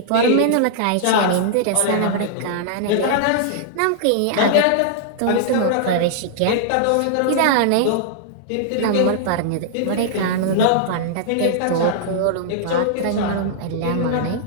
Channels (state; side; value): different; both; correlation -0.01